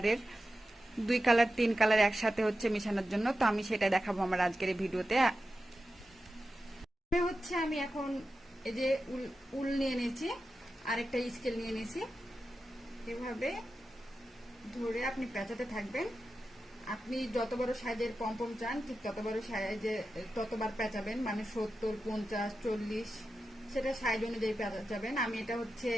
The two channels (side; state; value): both; normal; correlation 0.92